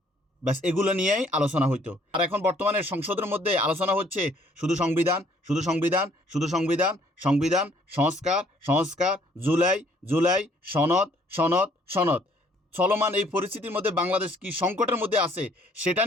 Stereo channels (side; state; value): both; normal; correlation 0.62